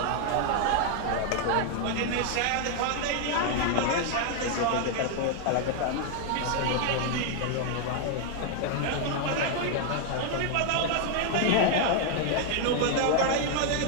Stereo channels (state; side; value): different; both; correlation 0.00